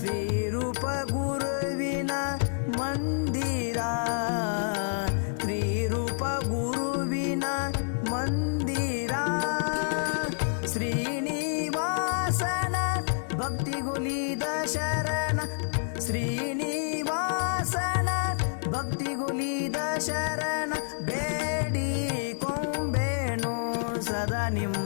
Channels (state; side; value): silent; right; digital silence